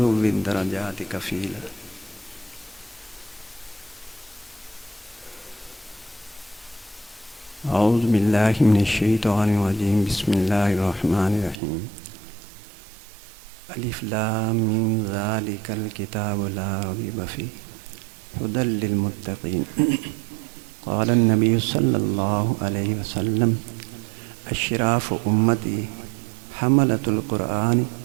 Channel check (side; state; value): left; drops out; at 11.6 s